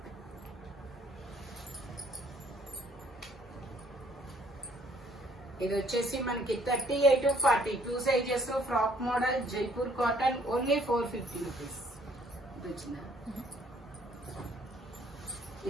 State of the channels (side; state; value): both; normal; correlation 0.62